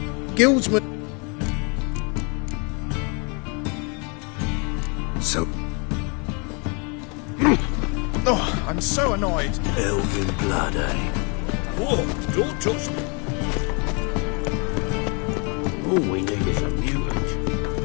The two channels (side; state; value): right; quieter; 33.8 dB